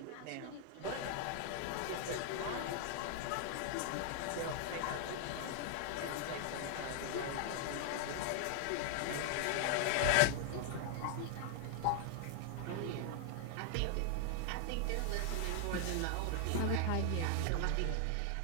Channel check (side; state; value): both; different; correlation 0.00